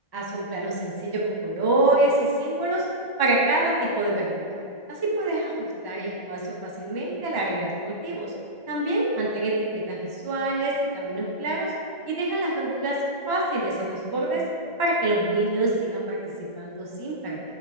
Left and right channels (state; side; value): late; right; 1.1 ms